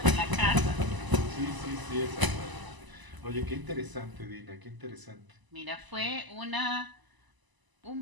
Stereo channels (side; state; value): left; late; 1.0 ms